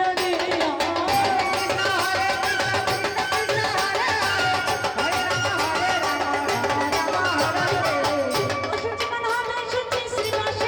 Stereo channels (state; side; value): identical; both; correlation 1.00